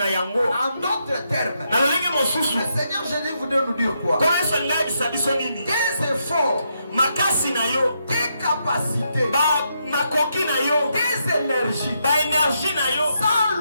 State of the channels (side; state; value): both; inverted; correlation -0.80